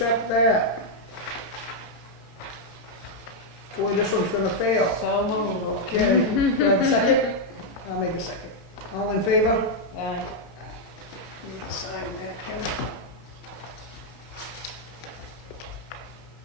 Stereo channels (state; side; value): late; right; 18 ms